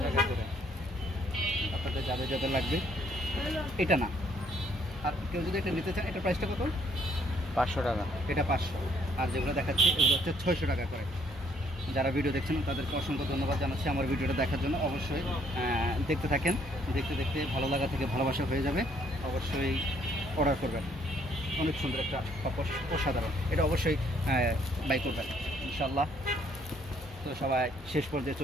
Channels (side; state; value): both; normal; correlation 0.66